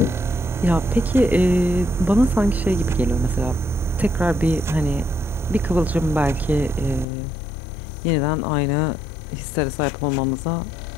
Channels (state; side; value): drops out; right; at 7.1 s